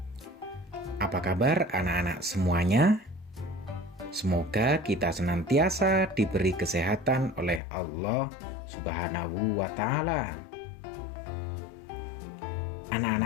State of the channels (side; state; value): right; drops out; at 7.6 s